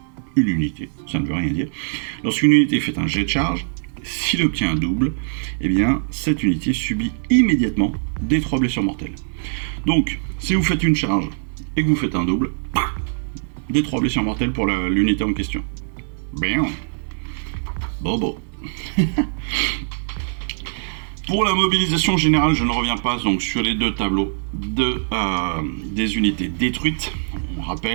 une unité, ça ne veut rien dire. Lorsqu'une unité fait un jet de charge, s'il obtient un double, eh bien cette unité subit immédiatement des 3 blessures mortelles. Donc, si vous faites une charge et que vous faites un double, des 3 blessures mortelles pour l'unité en question. Bien. Bobo. Pour la mobilisation générale, je ne reviens pas donc sur les 2 tableaux des unités détruites. On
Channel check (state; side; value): silent; left; 64 dB below the other